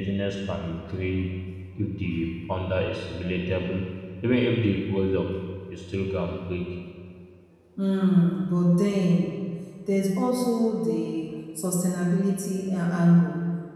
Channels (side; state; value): both; identical; correlation 1.00